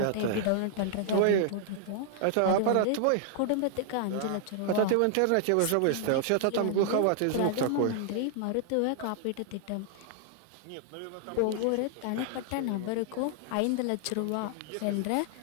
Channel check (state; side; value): different; both; correlation -0.01